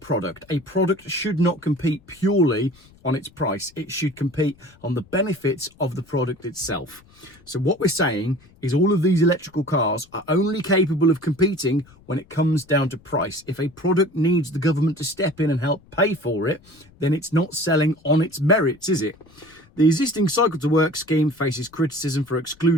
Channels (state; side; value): noise; left; rumble, 28 dB below the sound